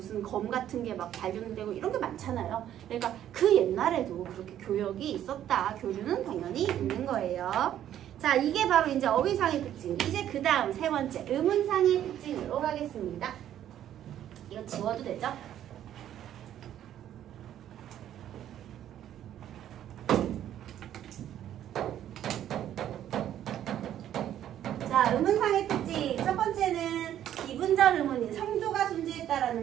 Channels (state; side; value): quieter; left; 11.2 dB